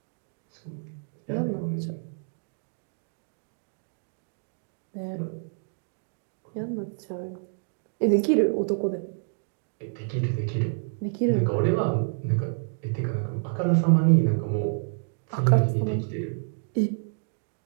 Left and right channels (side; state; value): left; silent; digital silence